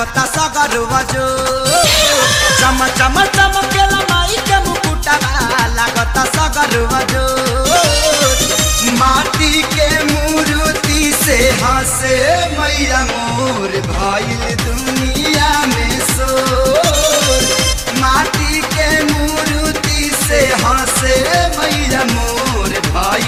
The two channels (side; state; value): both; identical; correlation 1.00